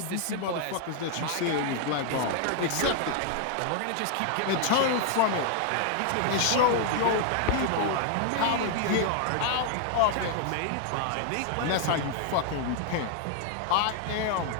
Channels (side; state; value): both; different; correlation 0.00